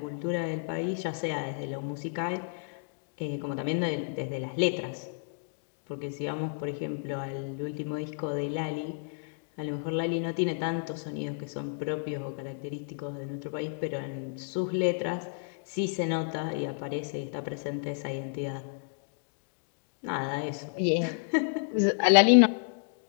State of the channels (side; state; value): right; silent; digital silence